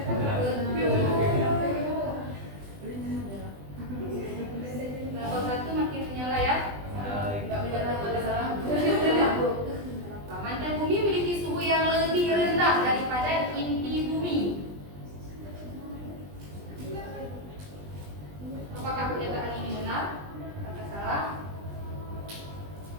Kelompok 1 makin menyala ya. Mantel bumi memiliki suhu yang lebih rendah daripada inti bumi. Apakah pernyataan ini benar? Apakah salah?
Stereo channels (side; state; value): left; late; 20 ms